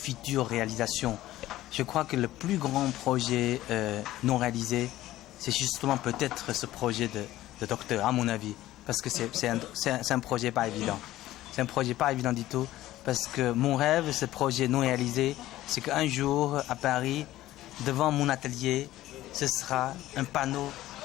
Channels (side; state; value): right; quieter; 15.2 dB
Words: réalisation. Je crois que le plus grand projet non réalisé, c'est justement peut-être ce projet de docteur, à mon avis, parce que c'est un projet pas évident. C'est un projet pas évident du tout, parce que mon rêve, ce projet non réalisé, c'est qu'un jour, à Paris, devant mon atelier, ce sera un panneau